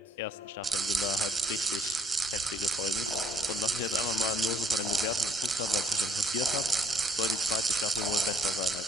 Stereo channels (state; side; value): normal; both; correlation 0.64